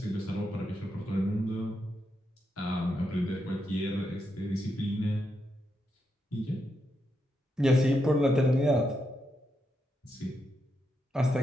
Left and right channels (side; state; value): both; normal; correlation 0.83